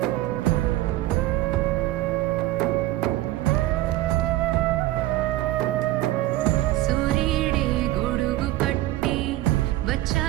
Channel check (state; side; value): quieter; left; 15.9 dB